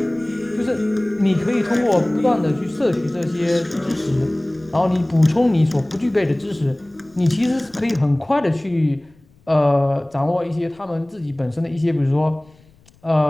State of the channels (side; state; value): left; noise; rumble, 30 dB below the sound